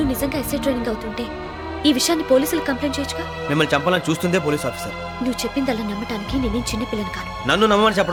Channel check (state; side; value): identical; both; correlation 1.00